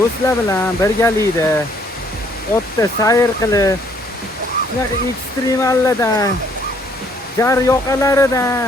bilan birgalikda otda sayr qilib, shunaqa ekstremallardan, jar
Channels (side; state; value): both; normal; correlation 0.64